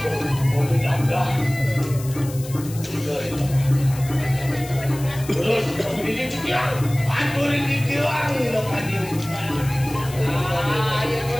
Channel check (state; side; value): noise; left; hiss, 15 dB below the sound